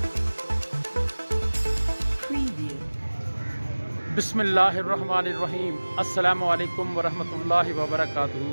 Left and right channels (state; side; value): inverted; both; correlation -1.00